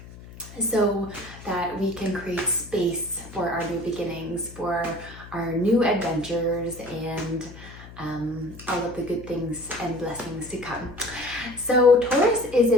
so that we can create space for our new beginnings, for our new adventures, and all of the good things and blessings to come. So Taurus is a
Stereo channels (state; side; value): noise; left; hum, 17 dB below the sound